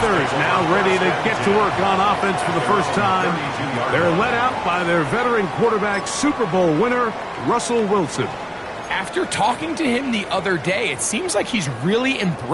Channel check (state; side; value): identical; both; correlation 1.00